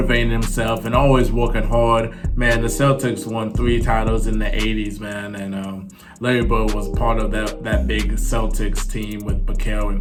himself and always working hard. Man, the Celtics won 3 titles in the 80s, man, and Larry Bird was part of that big Celtics team with Bakel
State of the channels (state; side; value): identical; both; correlation 1.00